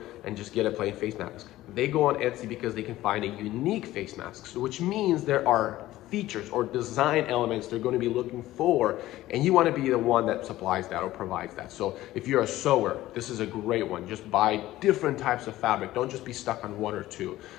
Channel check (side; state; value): right; quieter; 15.7 dB